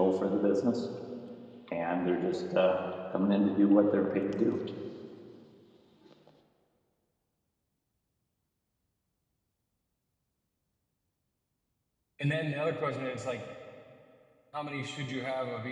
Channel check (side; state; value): both; identical; correlation 1.00